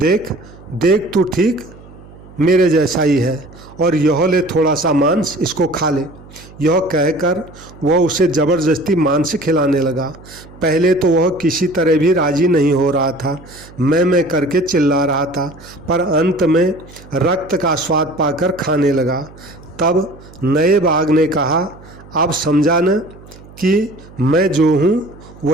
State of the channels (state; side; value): noise; right; hum, 21 dB below the sound